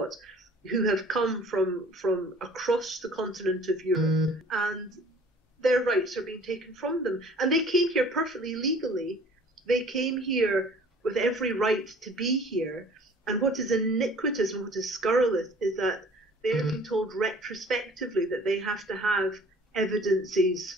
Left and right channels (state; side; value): normal; both; correlation 0.50